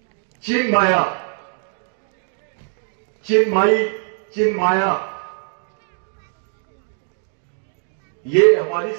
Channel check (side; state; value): left; silent; digital silence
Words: चिन्माया, चिन्माई, चिन्माया, ये हमारी